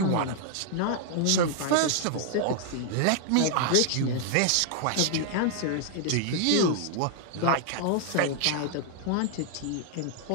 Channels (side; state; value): both; different; correlation -0.01